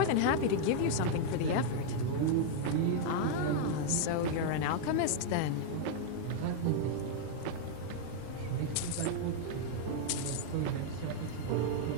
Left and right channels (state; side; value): different; both; correlation 0.00